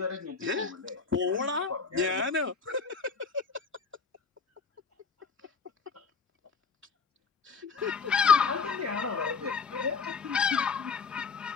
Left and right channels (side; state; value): right; quieter; 5.2 dB